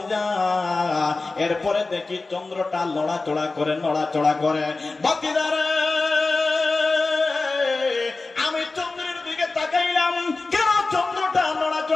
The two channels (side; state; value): right; quieter; 3.6 dB